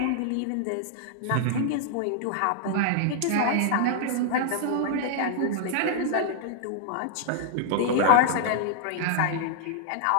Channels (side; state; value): both; different; correlation -0.01